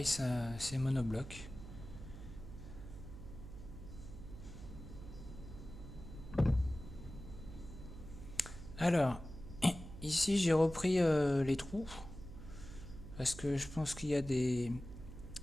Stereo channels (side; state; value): right; noise; hum, 12 dB below the sound